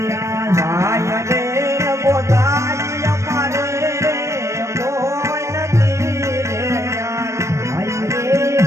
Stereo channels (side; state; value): left; late; 0.14 ms